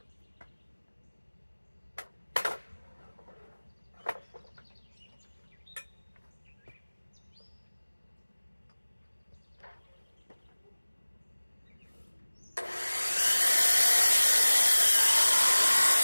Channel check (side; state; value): both; inverted; correlation -1.00